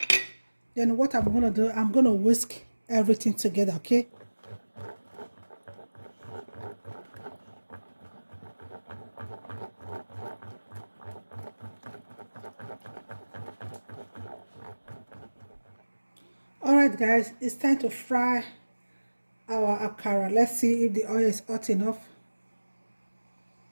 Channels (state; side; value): inverted; both; correlation -1.00